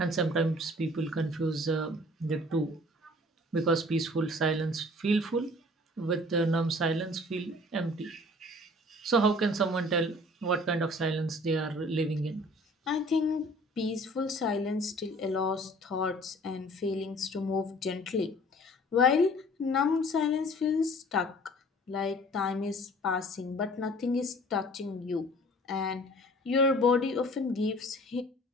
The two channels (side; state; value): both; normal; correlation 0.50